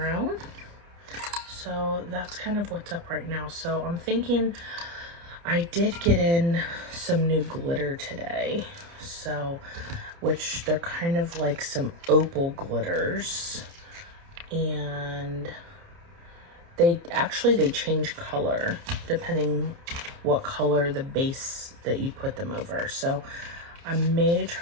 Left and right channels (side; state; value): left; late; 29 ms